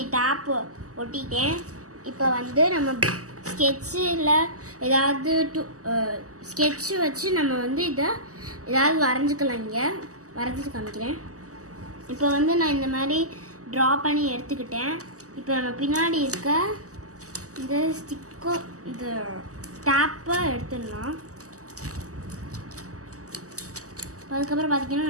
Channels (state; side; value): late; left; 0.66 ms